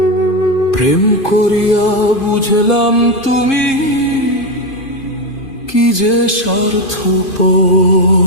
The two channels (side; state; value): right; late; 2.5 ms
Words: প্রেম করিয়া বুঝলাম তুমি কি যে স্বার্থপর।